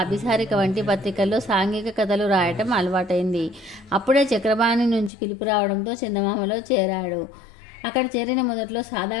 అభిసారిక వంటి పత్రికల్లో సాంఘిక కథలు రాయటం అలవాటైంది. అప్పుడే చక్రపాణి నుంచి పిలుపు రావడంతో చందమామలో చేరాడు. అక్కడ చేరిన మొదట్లో సాదా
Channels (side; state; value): right; drops out; at 5.1 s